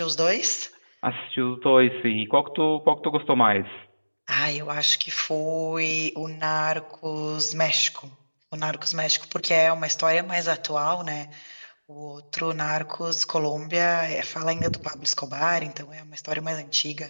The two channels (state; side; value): inverted; both; correlation -1.00